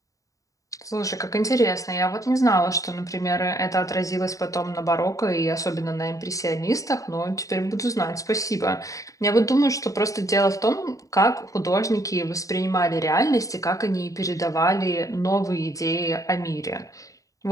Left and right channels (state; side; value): late; right; 0.16 ms